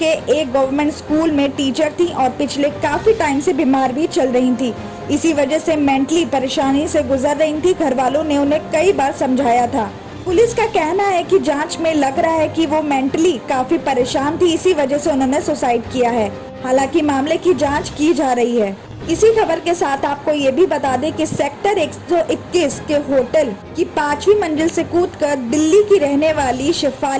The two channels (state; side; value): identical; both; correlation 1.00